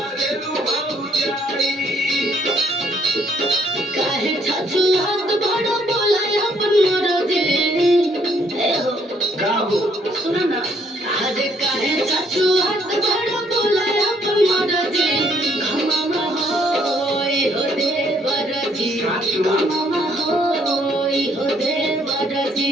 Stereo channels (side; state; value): both; normal; correlation 0.67